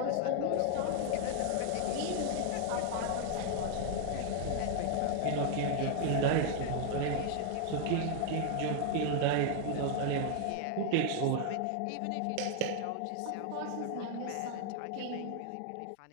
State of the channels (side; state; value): both; different; correlation 0.00